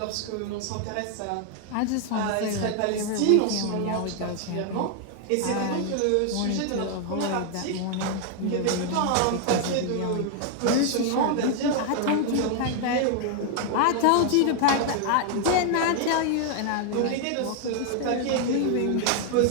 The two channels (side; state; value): both; different; correlation 0.00